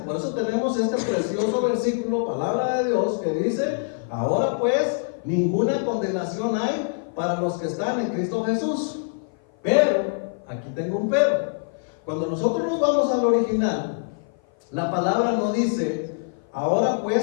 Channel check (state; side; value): silent; right; 55 dB below the other